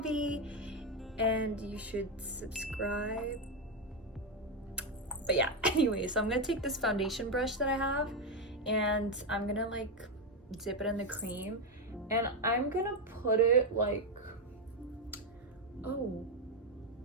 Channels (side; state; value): both; normal; correlation 0.07